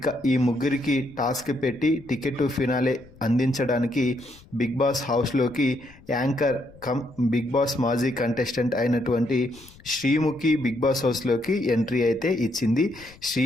ఈ ముగ్గురికి టాస్క్ పెట్టి టికెట్ టు ఫినాలే అందించడానికి బిగ్ బాస్ హౌస్లోకి యాంకర్ కమ్ బిగ్ బాస్ మాజీ కంటెస్టెంట్ అయినటువంటి శ్రీముఖి బిగ్ బాస్ హౌస్లోకి ఎంట్రీ అయితే ఇచ్చింది.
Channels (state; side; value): noise; left; rumble, 24 dB below the sound